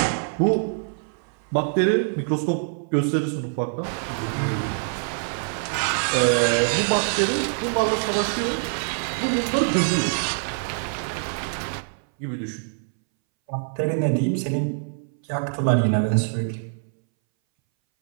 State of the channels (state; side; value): silent; left; 61 dB below the other